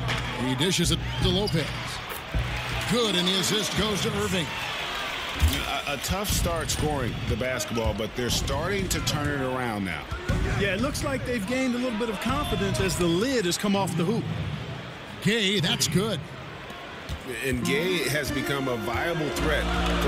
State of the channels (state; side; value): identical; both; correlation 1.00